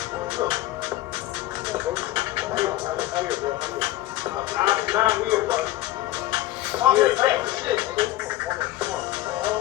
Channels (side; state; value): right; quieter; 15.8 dB